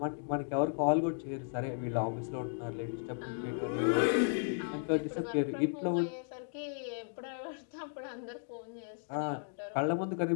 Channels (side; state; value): right; silent; digital silence